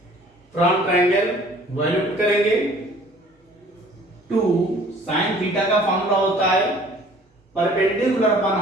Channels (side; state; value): both; normal; correlation 0.53